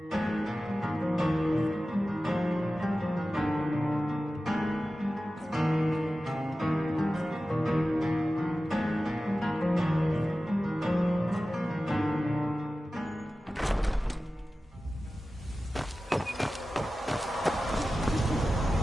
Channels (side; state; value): both; normal; correlation 0.95